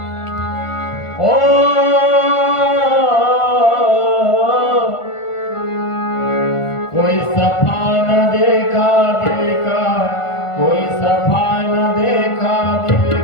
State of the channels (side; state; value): right; late; 1.4 ms